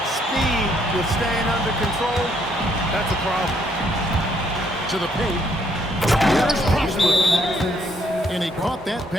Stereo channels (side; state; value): both; normal; correlation 0.70